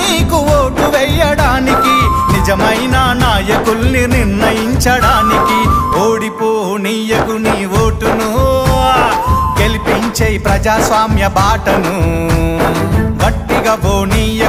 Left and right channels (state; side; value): identical; both; correlation 1.00